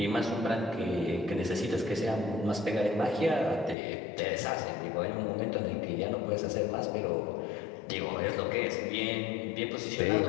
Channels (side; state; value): right; drops out; at 3.8 s